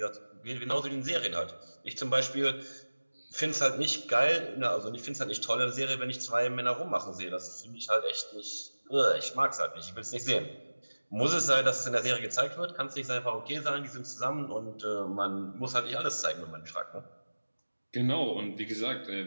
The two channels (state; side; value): inverted; both; correlation -1.00